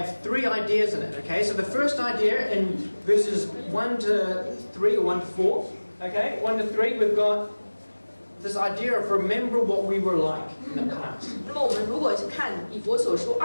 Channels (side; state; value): both; inverted; correlation -1.00